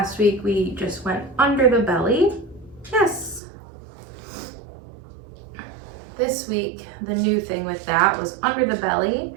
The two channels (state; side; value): drops out; left; at 3.4 s